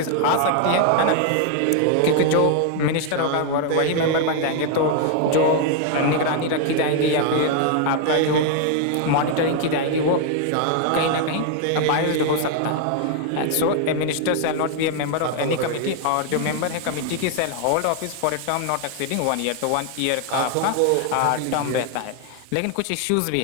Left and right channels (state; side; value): different; both; correlation 0.00